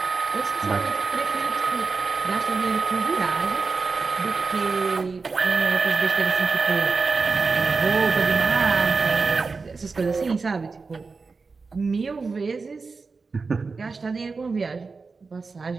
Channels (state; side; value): quieter; left; 4.4 dB